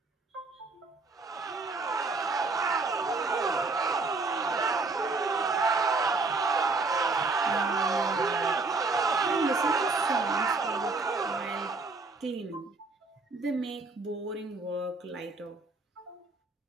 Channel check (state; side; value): quieter; left; 3.7 dB